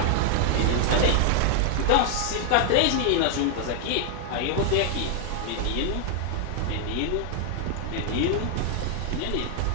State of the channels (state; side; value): different; both; correlation 0.00